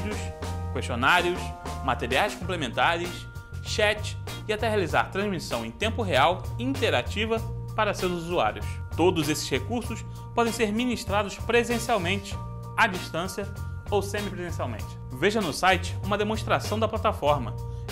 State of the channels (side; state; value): both; identical; correlation 1.00